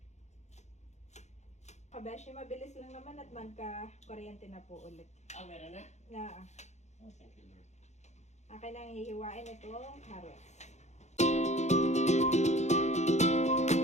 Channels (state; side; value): late; right; 0.33 ms